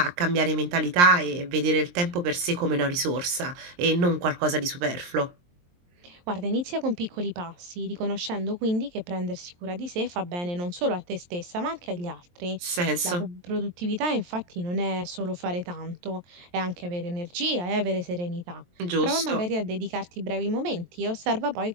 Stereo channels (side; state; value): left; late; 23 ms